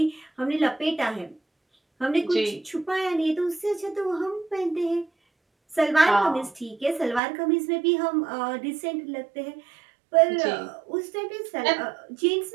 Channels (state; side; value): drops out; left; at 7.2 s